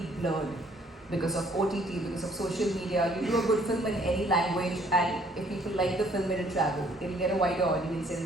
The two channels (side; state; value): both; normal; correlation 0.62